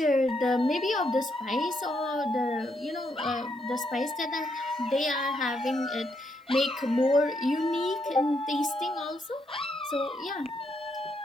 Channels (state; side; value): normal; both; correlation 0.77